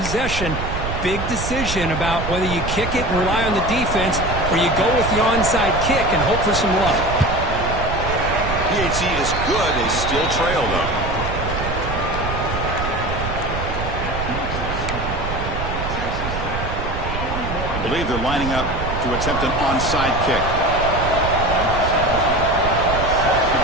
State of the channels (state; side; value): noise; right; rumble, 5 dB below the sound